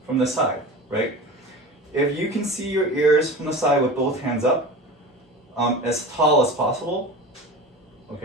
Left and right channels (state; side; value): normal; both; correlation 0.34